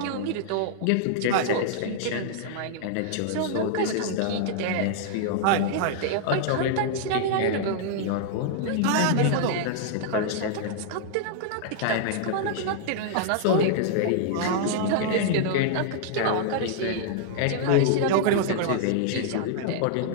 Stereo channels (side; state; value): both; different; correlation -0.01